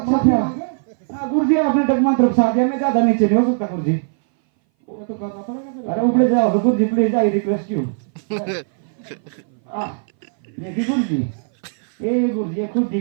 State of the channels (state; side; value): silent; left; 60 dB below the other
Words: अच्छा। हाँ गुरुजी आपने डगमंत्र फंसा दिया, मैं ज्यादा नीचे नहीं हो सकता गुरुजी। ये तो करना पड़ेगा फिर। अरे ऊपर जाओ तो गुरुजी प्लीज आई रिक्वेस्ट यू। ये की गुरुजी, ये गुरुजी ये खुद